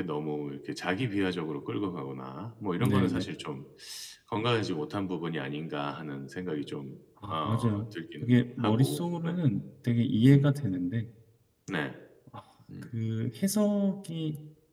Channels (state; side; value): identical; both; correlation 1.00